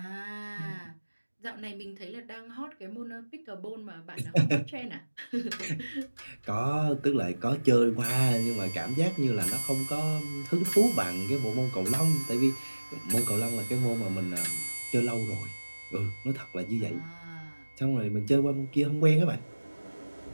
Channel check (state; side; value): inverted; both; correlation -1.00